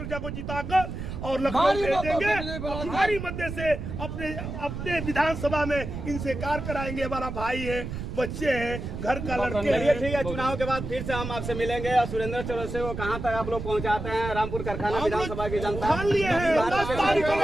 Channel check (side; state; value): right; noise; rumble, 6 dB below the sound